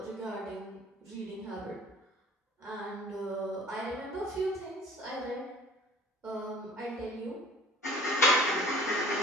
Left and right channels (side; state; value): both; normal; correlation 0.48